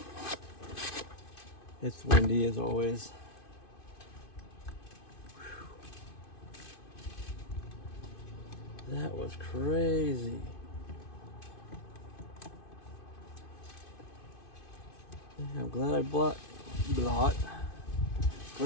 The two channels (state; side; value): late; right; 2.5 ms